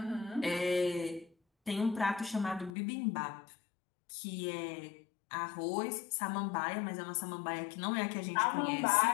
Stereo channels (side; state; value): right; drops out; at 2.7 s